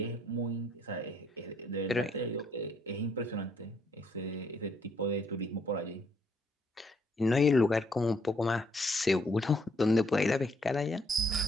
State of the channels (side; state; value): both; normal; correlation 0.69